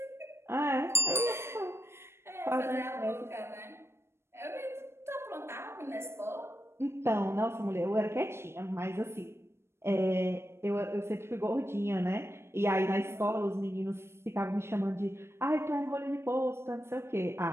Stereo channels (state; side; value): late; left; 0.12 ms